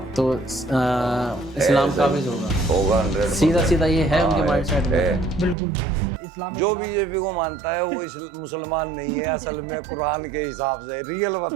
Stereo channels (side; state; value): left; drops out; at 5.6 s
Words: तो इस्लाम काबिज होगा 100%। सीधा ये है उनके माइंडसेट में। बिल्कुल इस्लाम के जो खिलाफ- बीजेपी को मानता है वो मुसलमान नहीं है असल में, कुरान के हिसाब से रियल